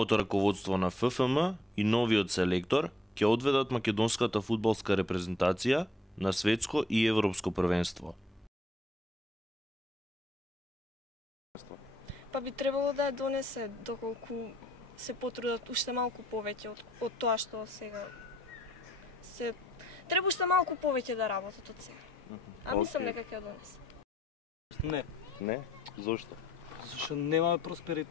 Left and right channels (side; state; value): both; normal; correlation 0.68